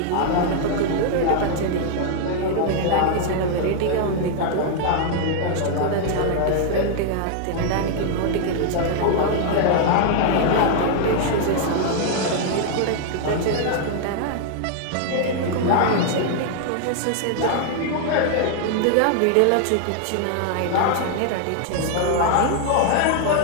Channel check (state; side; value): different; both; correlation 0.00